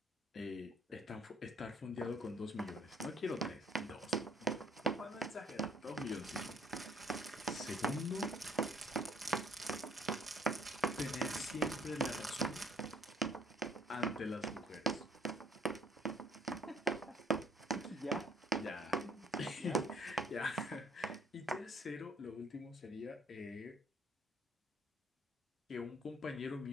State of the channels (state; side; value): normal; both; correlation 0.61